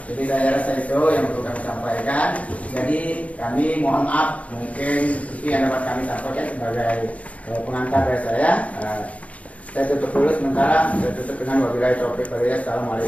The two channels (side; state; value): right; late; 0.066 ms